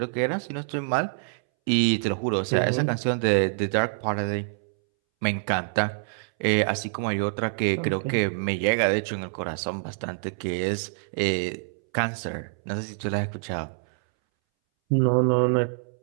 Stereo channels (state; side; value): silent; left; 61 dB below the other